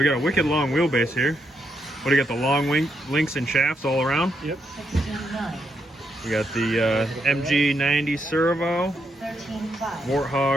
got a wicked long wheelbase here. What do you got? The long links and shafts all around? Yep. We got the MG90 servo.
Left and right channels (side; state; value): both; normal; correlation 0.79